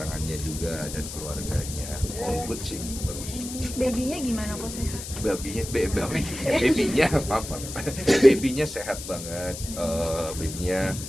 juga dan keluarganya. All good sih, bagus. Babynya gimana kok sehat? Babynya sehat banget, babynya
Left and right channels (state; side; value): noise; left; hiss, 9 dB below the sound